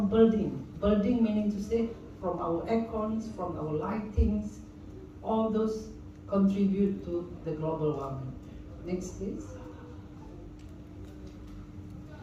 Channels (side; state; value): both; identical; correlation 1.00